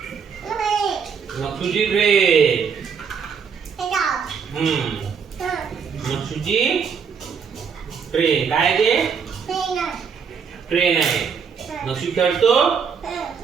नक्षुची ट्रे. नक्षुची ट्रे. काय ते? ट्रेन आहे. नक्षू खेळतो.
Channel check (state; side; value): quieter; left; 6.4 dB